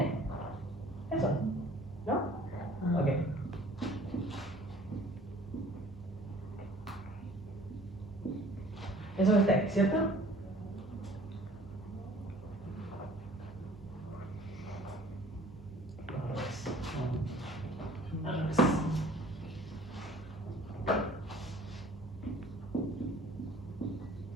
Eso. ¿No? Ok. Eso está ahí, ¿cierto? Al revés.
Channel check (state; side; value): normal; both; correlation 0.51